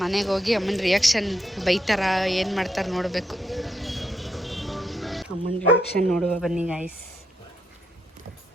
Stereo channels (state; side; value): normal; both; correlation 0.79